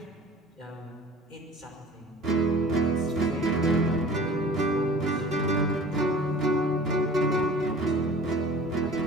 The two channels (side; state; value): both; normal; correlation 0.44